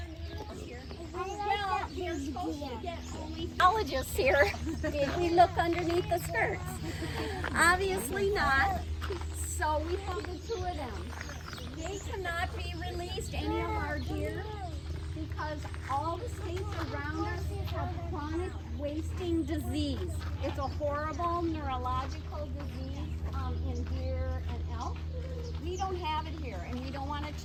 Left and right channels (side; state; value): both; identical; correlation 1.00